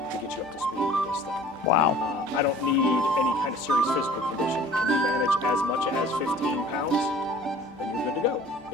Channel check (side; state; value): both; normal; correlation 0.48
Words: get you up to speed with this thing. Wow. I don't need any kind of serious physical condition. Can you manage as much as 15 pounds? Then you're good to go.